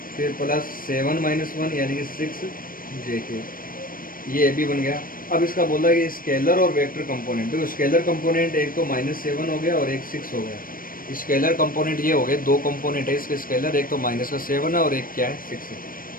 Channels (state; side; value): late; right; 0.41 ms